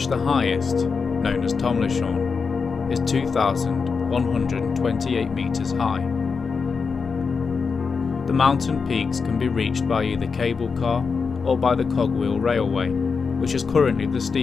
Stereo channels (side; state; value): right; quieter; 5.2 dB